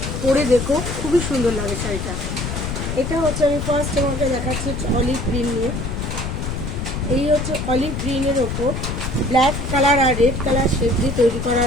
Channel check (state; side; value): noise; left; rumble, 4 dB below the sound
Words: পরে দেখো, খুবই সুন্দর লাগে শাড়িটা। এটা হচ্ছে আমি ফার্স্ট তোমাকে দেখাচ্ছি অলিভ গ্রিন নিয়ে। এই হচ্ছে অলিভ গ্রিনের ওপর ব্ল্যাক কালার আর রেড কালার শেড দিয়ে তৈরি করা